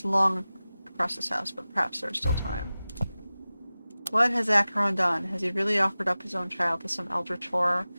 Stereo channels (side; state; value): both; inverted; correlation -0.96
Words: long across this house, but perhaps there is still time. What has Acheron done? Has he really offered up his own child to some eldritch horror?